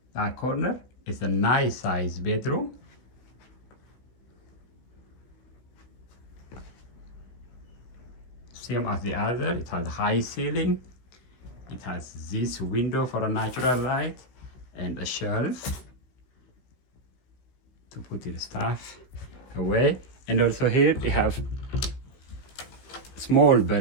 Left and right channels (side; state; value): right; late; 16 ms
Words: That corner is a nice size bedroom. Same as the other. It has high ceiling. It has this window for a natural light and a shelf to put your stuff away. And also here we have small